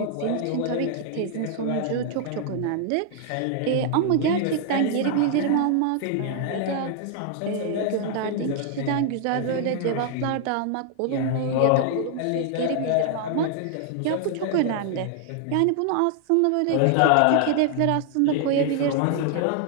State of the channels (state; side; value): different; both; correlation 0.00